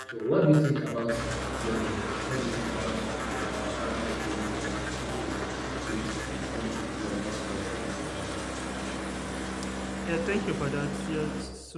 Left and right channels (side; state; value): both; identical; correlation 1.00